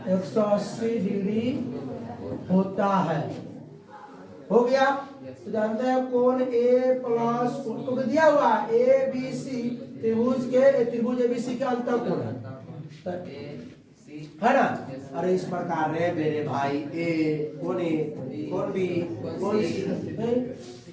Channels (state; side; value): identical; both; correlation 1.00